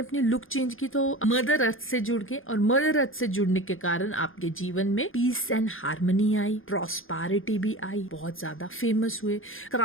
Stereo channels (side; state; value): right; late; 0.59 ms